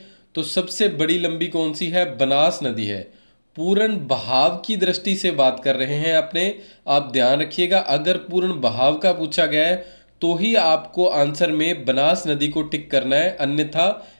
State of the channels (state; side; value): inverted; both; correlation -1.00